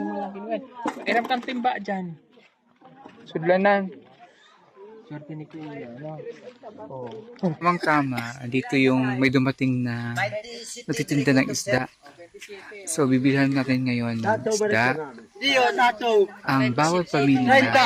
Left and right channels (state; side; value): identical; both; correlation 1.00